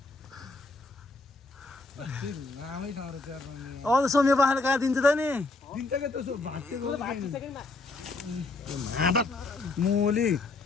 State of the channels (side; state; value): right; quieter; 3.4 dB